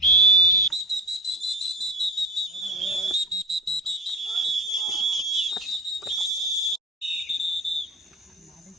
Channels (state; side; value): normal; both; correlation 0.33